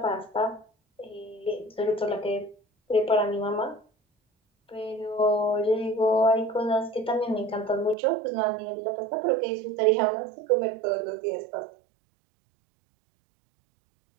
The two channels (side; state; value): left; drops out; at 8.0 s